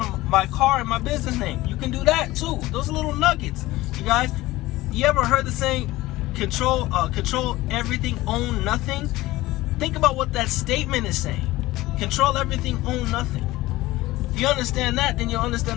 in my business name. You can do that too. Those are little nuggets. You guys, you ever heard the saying, control everything, own nothing? Think about what that statement is saying. Control everything, own nothing. If you understand that, then you'll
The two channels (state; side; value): quieter; right; 18.2 dB